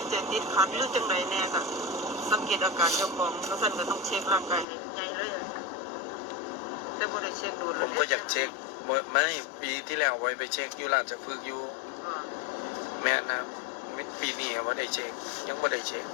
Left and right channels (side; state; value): right; drops out; at 4.7 s